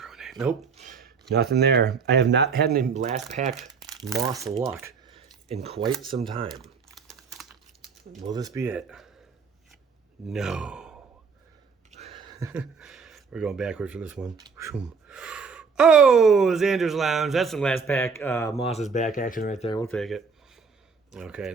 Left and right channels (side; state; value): left; quieter; 5.4 dB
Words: Nope. Nothing there. I have not had any last pack Moss luck in quite some time. Will this be it? No. We're going backwards for this one. Oh, Xander's Lounge. That's some last pack Moss's back action right there. We'll take it. Okay,